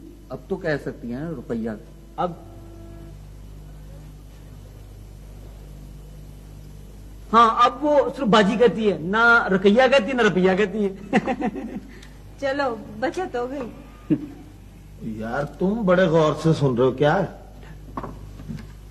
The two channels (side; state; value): both; identical; correlation 1.00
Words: अब तो कह सकती हैं रुपया। अब अब वो सिर्फ बाजी कहती है ना रुपया कहती है ना रुपया कहती है। चलो बचत हो गई। यार तुम बड़े गौर से सुन रहे हो क्या?